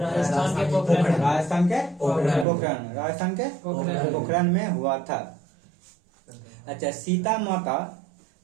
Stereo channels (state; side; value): drops out; left; at 2.5 s